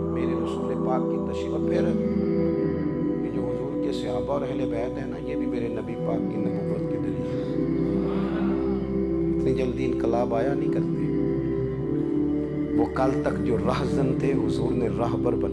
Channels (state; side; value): identical; both; correlation 1.00